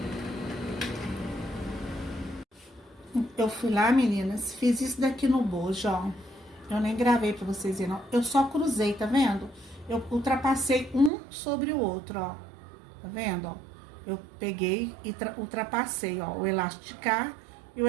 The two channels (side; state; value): left; drops out; at 11.1 s